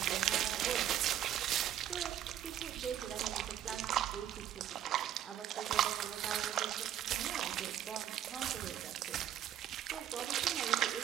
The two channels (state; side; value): quieter; left; 10.9 dB